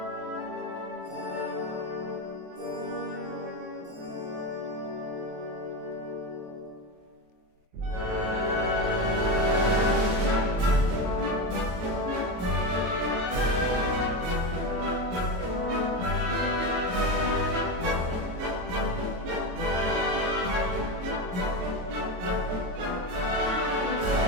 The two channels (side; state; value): left; late; 23 ms